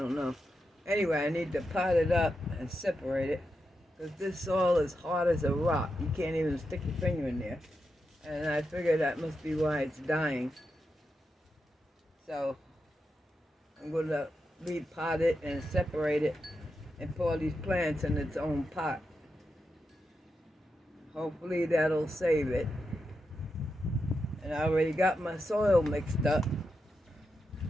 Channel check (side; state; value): both; normal; correlation 0.87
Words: know. Anyway, I need to pot it up and separate it, because this soil is hard as a rock. You can't even stick your finger in there. And I figure that must be why it's dying. So I'm going to repot it and separate it and pour these plants in its own pot. Hopefully that'll save it. And I already got my soil mixed up.